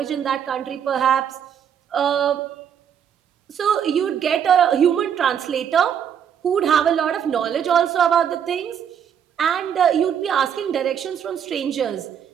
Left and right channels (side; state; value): left; quieter; 8.5 dB